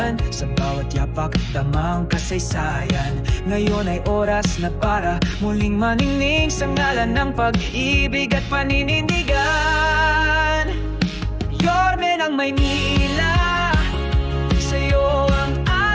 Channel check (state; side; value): identical; both; correlation 1.00